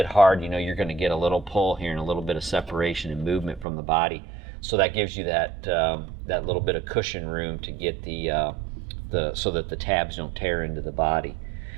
hard, you know you're going to get a little pull here and a little bit of separation and movement from the body. So that gives you that that little bit of cushion room to get so that the tabs don't tear into the body.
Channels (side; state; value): left; drops out; at 3.7 s